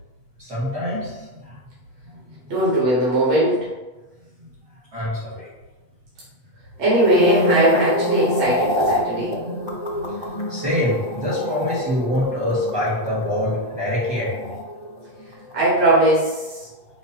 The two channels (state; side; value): late; left; 8.1 ms